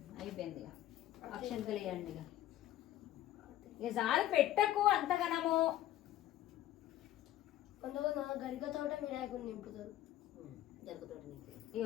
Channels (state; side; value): quieter; right; 13.3 dB